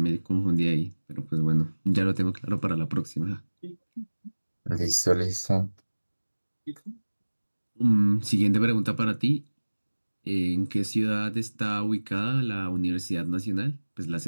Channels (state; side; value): inverted; both; correlation -1.00